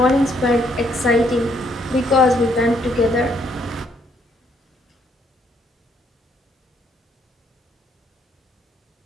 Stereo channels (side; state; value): both; normal; correlation 0.70